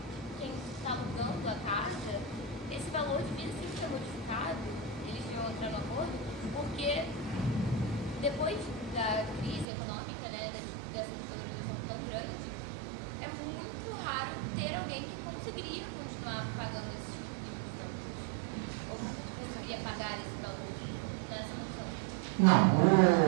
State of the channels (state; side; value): drops out; left; at 9.7 s